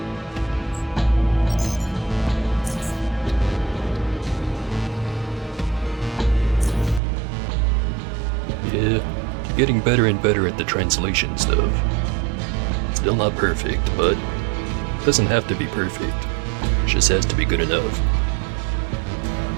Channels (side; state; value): left; drops out; at 7.0 s